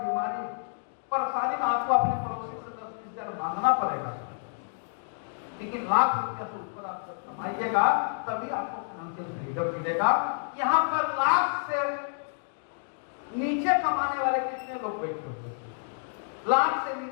परेशानी में आपको अपने पड़ोसी से 10-20 हजार मांगना पड़ेगा। लेकिन लाख रुपया से ऊपर आप जब कमाइएगा तभी आपको फाइनेंशियल फ्रीडम मिलेगा। यहाँ पर लाख से नीचे कमाने वाले कितने लोग बैठे हुए? लाख से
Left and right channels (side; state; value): right; silent; digital silence